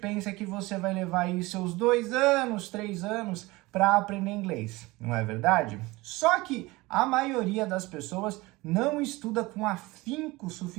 que você vai levar aí seus 2 anos, 3 anos para aprender inglês, não é verdade? Só que a maioria das pessoas não estuda com afinco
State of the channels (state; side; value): quieter; left; 21.6 dB